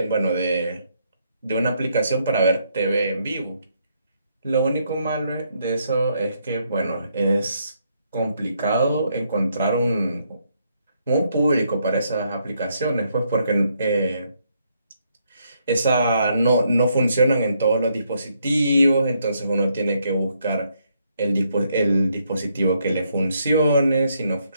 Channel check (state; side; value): inverted; both; correlation -0.75